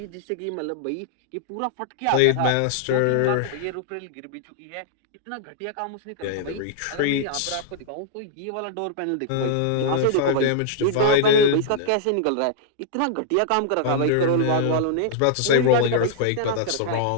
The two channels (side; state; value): both; different; correlation -0.01